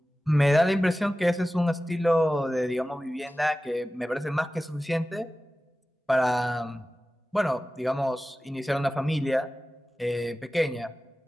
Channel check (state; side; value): normal; both; correlation 0.96